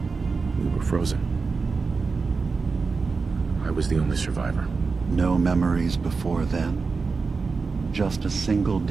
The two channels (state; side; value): quieter; left; 4.6 dB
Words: We were frozen. I was the only survivor. No memories before then? Just a single